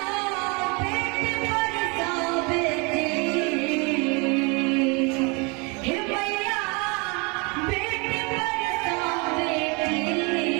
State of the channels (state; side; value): quieter; left; 30.2 dB